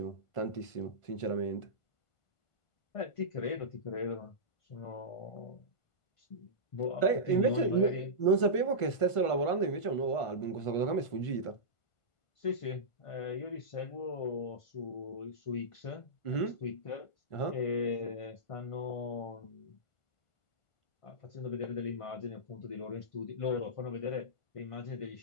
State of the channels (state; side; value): late; right; 1.5 ms